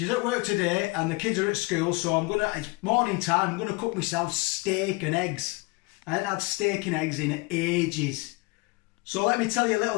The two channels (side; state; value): right; quieter; 25.5 dB